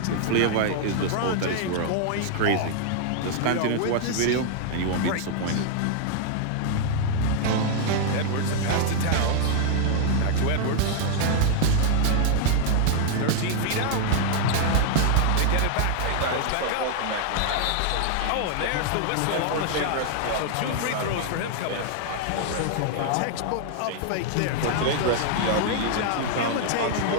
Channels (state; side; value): different; both; correlation 0.00